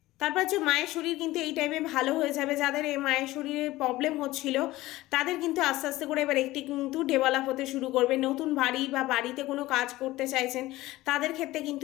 তারপর হচ্ছে মায়ের শরীর কিন্তু এই টাইমে ভালো হয়ে যাবে। যাদের এই মায়ের শরীরে প্রবলেম হচ্ছিল তাদের কিন্তু আস্তে আস্তে করে এবার একটি কিন্তু ডেভেলপ হতে শুরু করবে। নতুন বাড়ি বা বাড়িতে কোনো কাজ করতে চাইছেন তাদের ক্ষেত্রে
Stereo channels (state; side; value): quieter; right; 17.7 dB